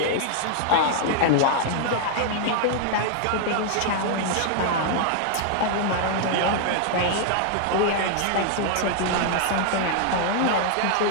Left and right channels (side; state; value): both; different; correlation 0.00